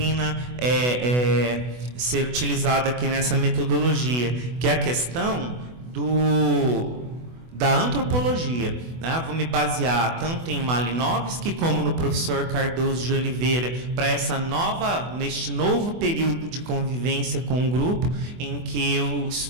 ser utilizada aqui nessa metodologia, que é a questão da antropologia, né? Vou me basear tanto em Malinowski como no professor Cardoso de Oliveira para neste novo período de convivência com o grupo, em que eu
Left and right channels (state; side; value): late; left; 24 ms